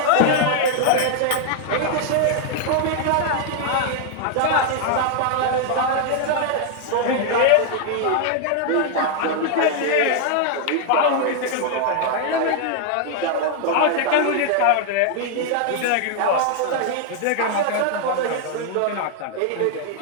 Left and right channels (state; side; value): different; both; correlation 0.00